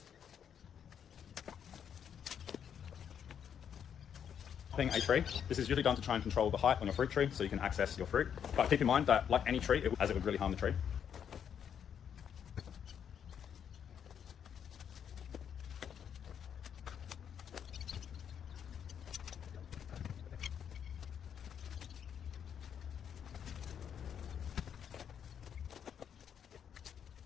A tree. This is usually done to try and control the height on your fruit tree so you can access your fruit. But keep in mind that, like any tree, it would really harm the tree.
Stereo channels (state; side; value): quieter; right; 8.3 dB